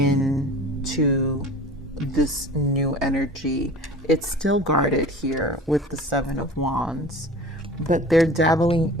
this new energy. It's still guarded here with the Seven of Wands, but they're dabbling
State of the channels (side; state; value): both; normal; correlation 0.40